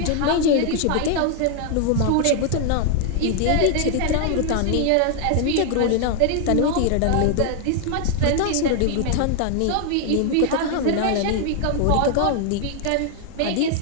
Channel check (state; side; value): different; both; correlation 0.00